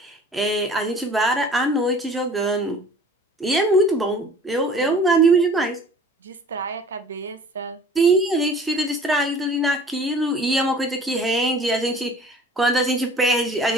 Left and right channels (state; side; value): normal; both; correlation 0.48